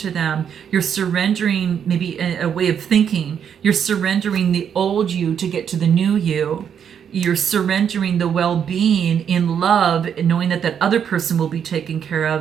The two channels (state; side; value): quieter; left; 8.1 dB